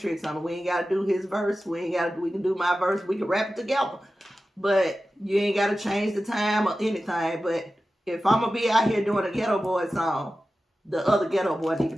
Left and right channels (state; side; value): normal; both; correlation 0.94